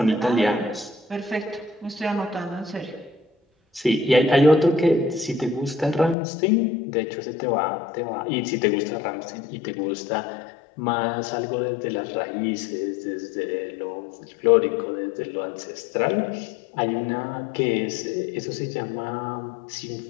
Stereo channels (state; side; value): drops out; right; at 6.2 s